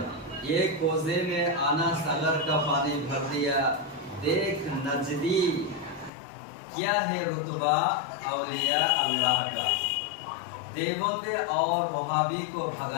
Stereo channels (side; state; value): right; drops out; at 6.1 s